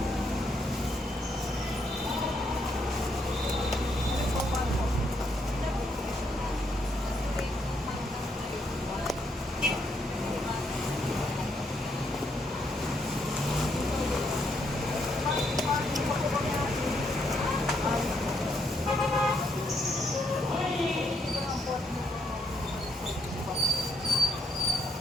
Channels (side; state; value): both; normal; correlation 0.75